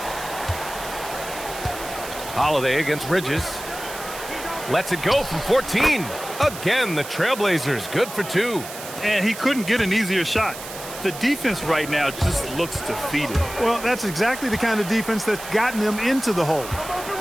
Holiday against Bridges. Lets it go from 14. Again, the Trailblazers good for 2. And he couldn't get an easier shot. The defense right now just looks defeated. Well, that's exactly the kind of defense that's gotten them into the hole.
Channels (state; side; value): noise; right; hiss, 12 dB below the sound